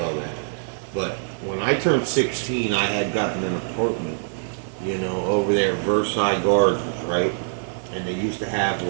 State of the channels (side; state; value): left; silent; 63 dB below the other